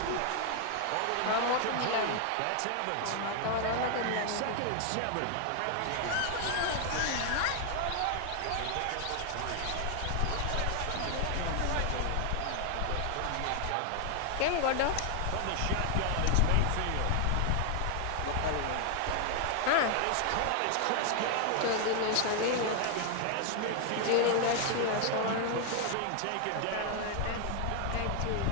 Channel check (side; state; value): both; different; correlation 0.00